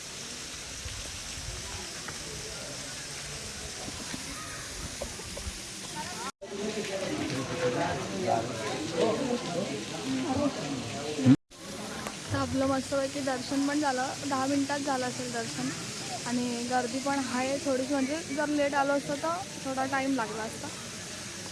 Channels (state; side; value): identical; both; correlation 1.00